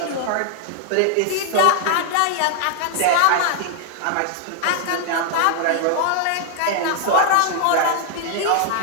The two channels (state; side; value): different; both; correlation 0.00